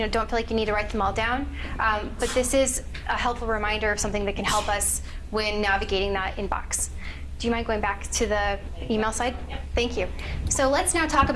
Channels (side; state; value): both; identical; correlation 1.00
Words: don't feel like you need to write them all down. But this is a helpful reminder of something that can help us when navigating that inbox. Do you mind going back to the email side? Thank you. So let's now talk